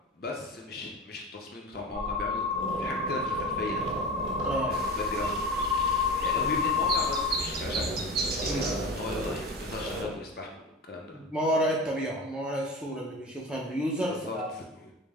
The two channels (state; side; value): normal; both; correlation 0.30